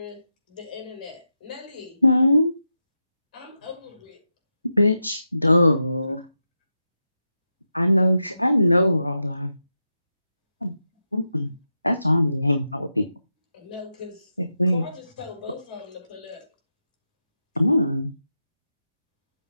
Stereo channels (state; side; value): inverted; both; correlation -0.89